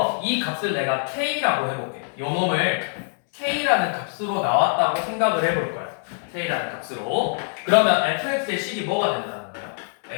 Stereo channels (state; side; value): silent; right; 63 dB below the other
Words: 이 값을 내가 k라고 해볼게. 요 놈을 k라는 값으로 나왔다고 생각을 해볼 거야. k라는 값으로. 그러면 fx의 식이 뭐가 된다는 거야?